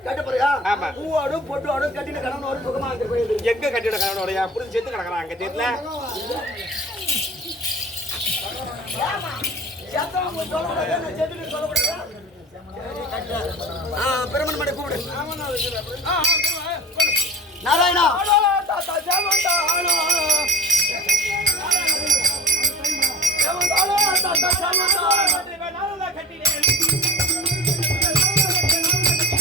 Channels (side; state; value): both; normal; correlation 0.40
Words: ஆமா, எங்க கட்டிட கணவனோட புரிஞ்சு சேர்த்து கிடக்குறான் அங்க தெரியல. பிரமன் மடை கூப்பிடு. நாராயணா